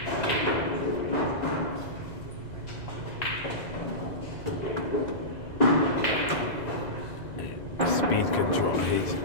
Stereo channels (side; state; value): right; late; 2.0 ms